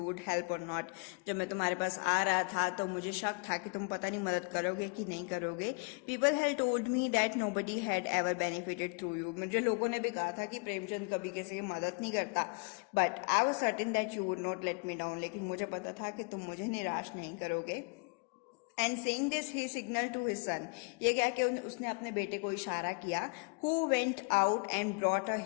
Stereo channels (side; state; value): right; quieter; 33.0 dB